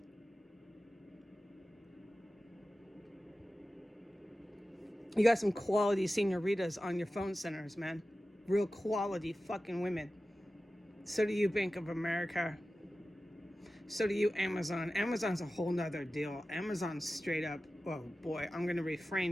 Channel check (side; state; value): both; normal; correlation 0.95